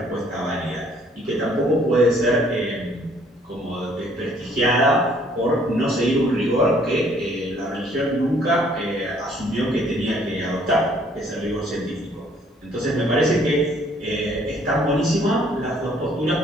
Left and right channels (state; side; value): normal; both; correlation 0.61